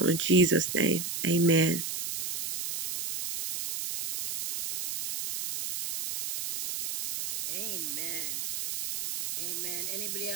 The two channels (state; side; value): noise; right; hiss, 5 dB below the sound